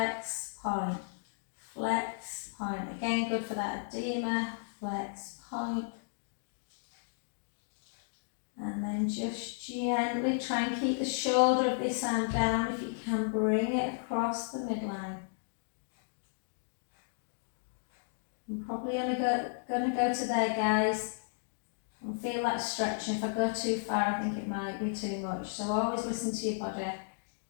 point. Flex, point. Again, good for that edema. Flex, point. And then just gently try and keep the shoulder of this arm down. If you can, bring it across the midline. I'm probably only going to go to there, guys. And feel that stretching. If I go too far, I think it might be too much. So always listen to your body,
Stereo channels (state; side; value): silent; right; digital silence